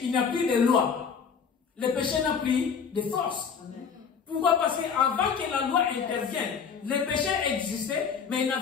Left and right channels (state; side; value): quieter; right; 6.4 dB